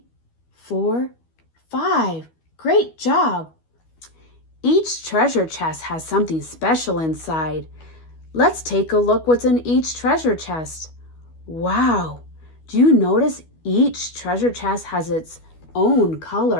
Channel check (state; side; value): late; right; 12 ms